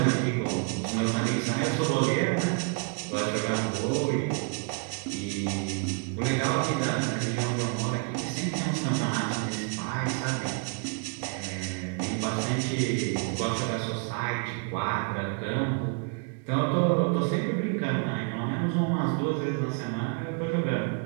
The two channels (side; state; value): left; quieter; 38.8 dB